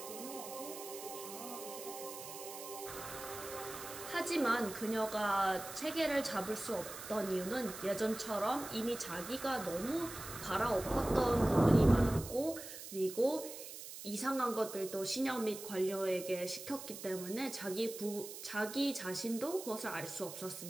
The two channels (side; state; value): right; noise; hiss, 11 dB below the sound